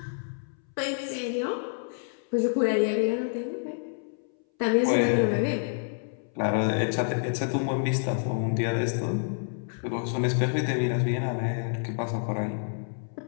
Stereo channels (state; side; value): silent; right; 59 dB below the other